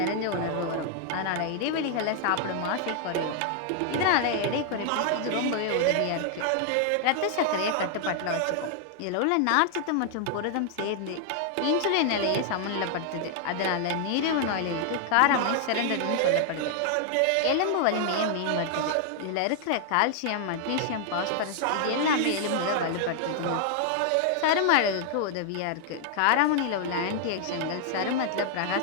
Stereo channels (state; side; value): different; both; correlation 0.00